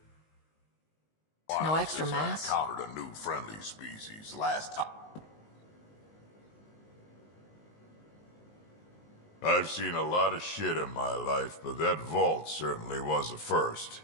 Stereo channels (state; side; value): late; right; 19 ms